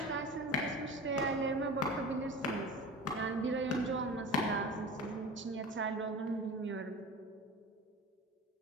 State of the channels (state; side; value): normal; both; correlation 0.34